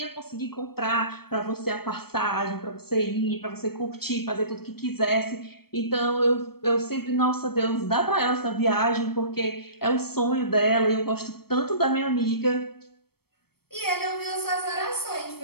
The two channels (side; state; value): right; late; 0.95 ms